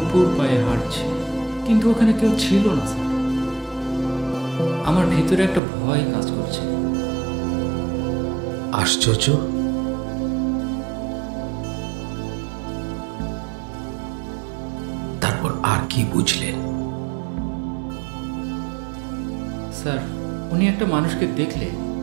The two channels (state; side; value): drops out; left; at 5.6 s